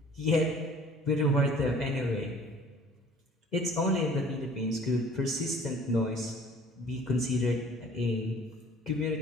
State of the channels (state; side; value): normal; both; correlation 0.51